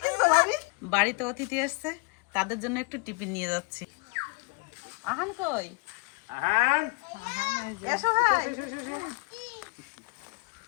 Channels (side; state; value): right; quieter; 29.8 dB